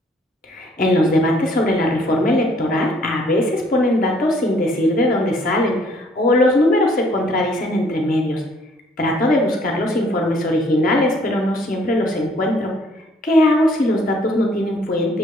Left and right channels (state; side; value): normal; both; correlation 0.62